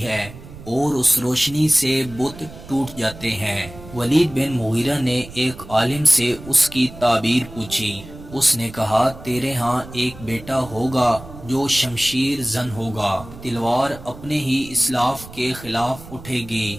ہے اور اس روشنی سے بت ٹوٹ جاتے ہیں۔ ولید بن مغیرہ نے ایک عالم سے اس کی تعبیر پوچھی۔ اس نے کہا تیرے ہاں ایک بیٹا ہوگا جو شمشیر زن ہوگا، تلوار اپنے ہی اسلاف کے خلاف اٹھے گی۔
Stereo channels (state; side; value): noise; right; rumble, 16 dB below the sound